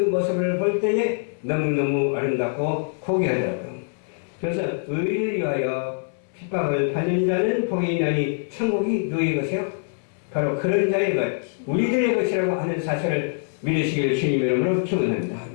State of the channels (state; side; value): silent; right; 61 dB below the other